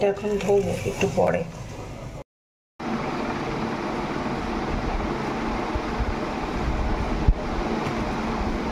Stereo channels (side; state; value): both; identical; correlation 1.00